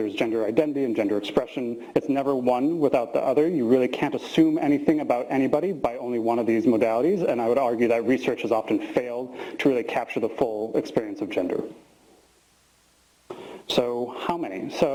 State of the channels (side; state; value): both; identical; correlation 1.00